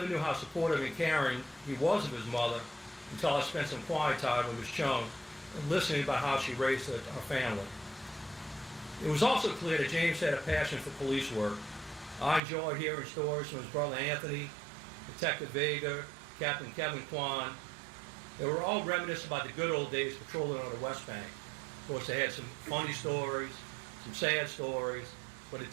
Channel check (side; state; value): left; drops out; at 12.4 s